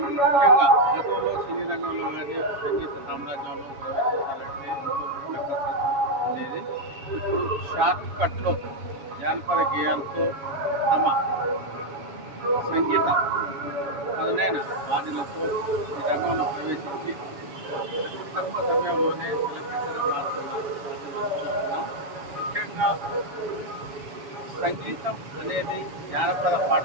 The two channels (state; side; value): late; left; 7.1 ms